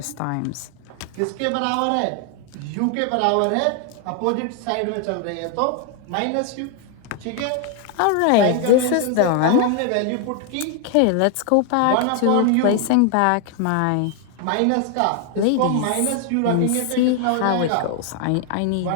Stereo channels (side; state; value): both; different; correlation 0.00